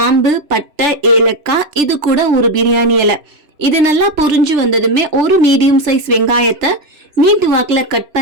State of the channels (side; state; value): left; late; 3.0 ms